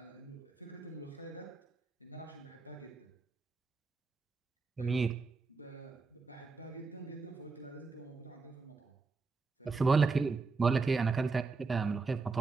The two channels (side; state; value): left; quieter; 4.3 dB